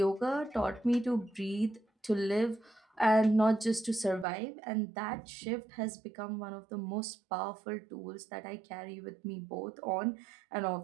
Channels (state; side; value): drops out; left; at 4.2 s